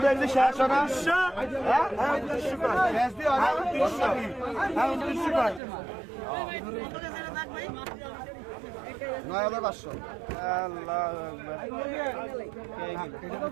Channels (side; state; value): left; drops out; at 5.6 s